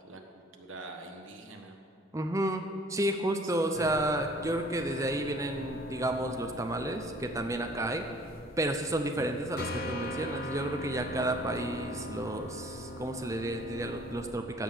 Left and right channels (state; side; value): normal; both; correlation 0.54